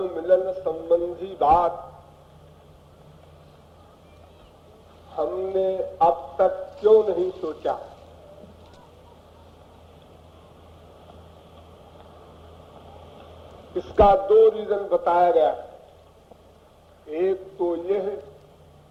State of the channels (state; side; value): identical; both; correlation 1.00